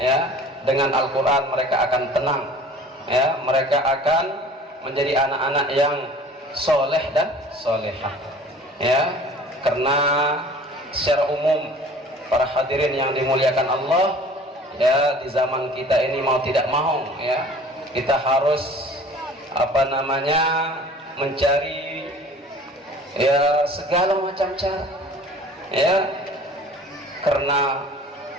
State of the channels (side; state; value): both; normal; correlation 0.47